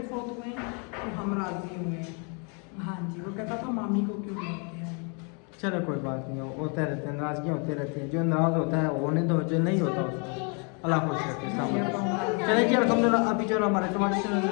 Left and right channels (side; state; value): right; quieter; 36.5 dB